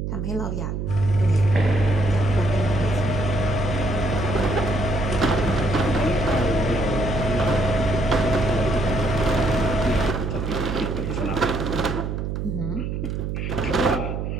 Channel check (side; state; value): right; noise; hum, 3 dB below the sound